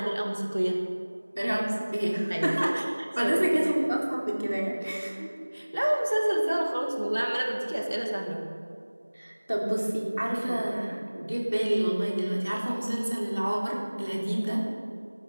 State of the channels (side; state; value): both; inverted; correlation -1.00